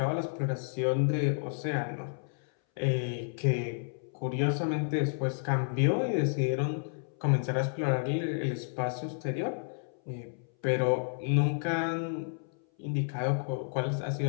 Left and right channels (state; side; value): silent; right; 57 dB below the other